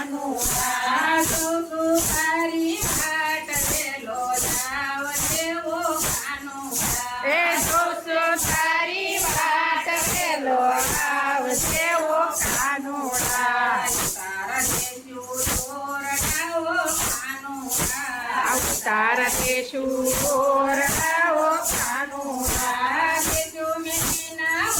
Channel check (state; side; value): identical; both; correlation 1.00